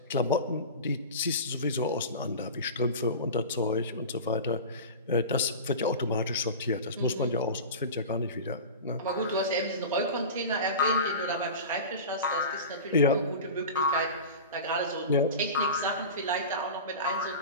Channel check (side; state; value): both; inverted; correlation -0.30